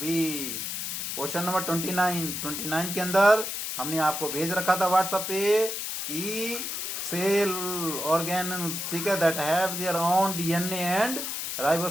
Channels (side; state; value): left; noise; hiss, 4 dB below the sound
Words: क्वेश्चन नंबर 29 के अंदर हमने आपको भेज रखा था व्हाट्सएप पे कि सेल ऑर्गेनल्स, ठीक है, that have their own DNA and